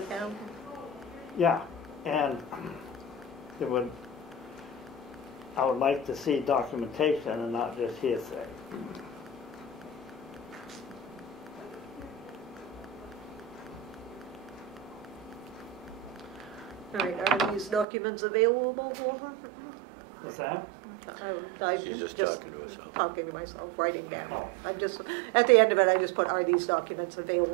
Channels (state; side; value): drops out; left; at 17.9 s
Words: town? Yeah, and I would like to see documentation and not just hearsay. All right, are these documents available? What's that? I'm She's just just talking to herself. talking to myself, writing down. Oh. I'm just, at the end of it, I just put, are these documents